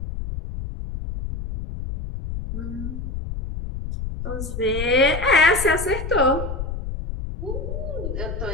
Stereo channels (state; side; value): noise; left; rumble, 6 dB below the sound